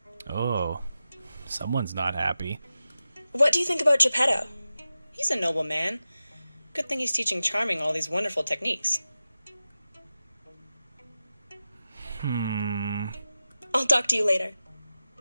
Oh, someone's not happy. What do you think about Geppetto? He's a noble man. Good thing he's teaching Charming all these wonderful techniques. I'll talk to you later.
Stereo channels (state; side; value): inverted; both; correlation -0.93